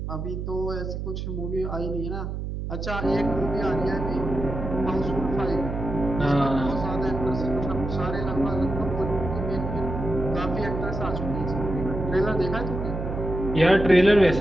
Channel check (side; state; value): right; noise; hum, 5 dB below the sound